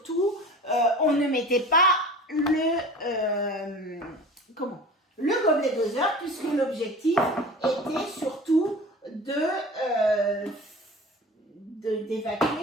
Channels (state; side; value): normal; both; correlation 0.39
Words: on ne mettait pas le gobelet doseur, puisque l'objectif était surtout